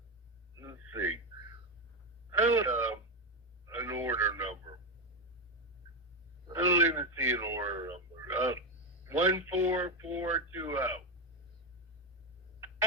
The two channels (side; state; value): both; normal; correlation 0.10